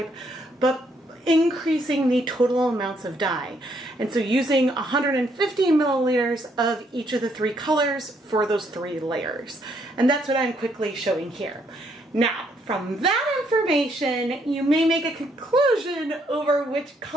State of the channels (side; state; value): both; normal; correlation 0.71